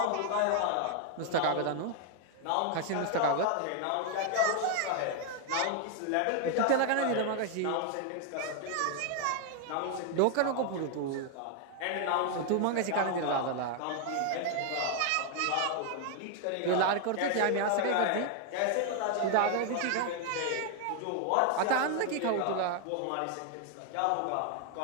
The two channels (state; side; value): different; both; correlation 0.00